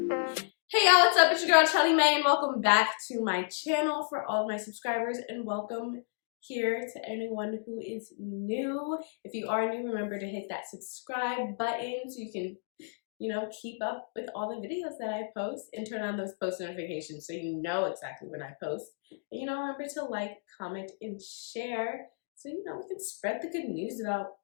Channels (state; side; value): silent; right; digital silence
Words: y'all, what's up? It's your girl Shelly May and welcome back to my channel for all of my subscribers, and welcome here to anyone who is new. If you are new, remember to hit that subscribe button so you can, keep up with all the videos that I post, and turn on those post notifications so you know exactly when I post. And remember to like, comment, and share so we can spread the good news about